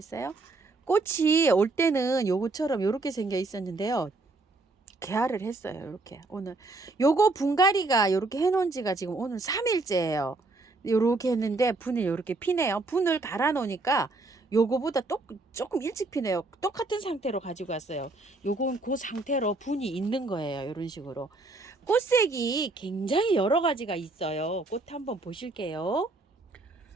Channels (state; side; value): quieter; left; 3.3 dB